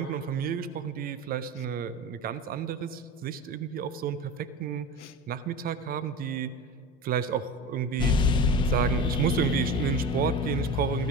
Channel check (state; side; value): normal; both; correlation 0.29